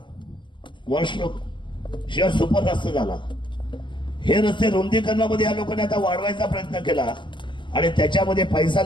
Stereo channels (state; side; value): late; right; 0.23 ms